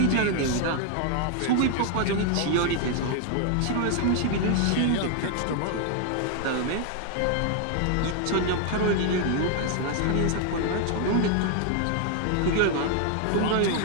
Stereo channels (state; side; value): different; both; correlation 0.00